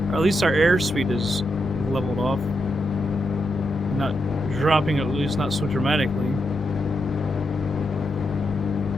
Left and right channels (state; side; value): normal; both; correlation 0.84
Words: or at least our airspeed is leveled off. Not dropping, at least not so dramatically.